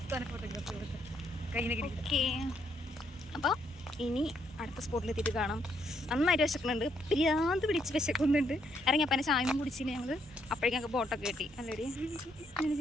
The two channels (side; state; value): both; normal; correlation 0.73